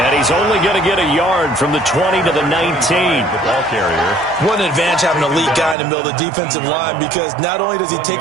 he's only going to get a yard from the 20 to the 19. The ball carrier. What an advantage having an elite guy in the middle of the defensive line, because not only does he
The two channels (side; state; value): left; drops out; at 5.8 s